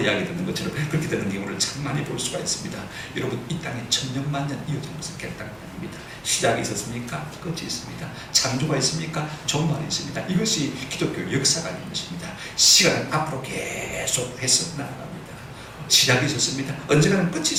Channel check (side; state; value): both; identical; correlation 1.00